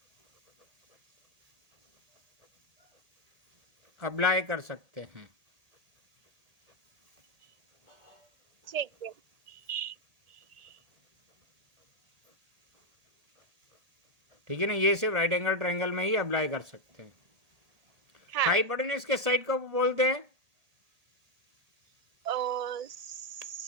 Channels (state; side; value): late; left; 1.8 ms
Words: अप्लाई कर सकते हैं। ठीक है। ठीक है ना? ये सिर्फ राइट एंगल ट्रायंगल में ही अप्लाई कर सकते हैं। हाँ हाइपोटेन्यूज के साइड को बोलते हैं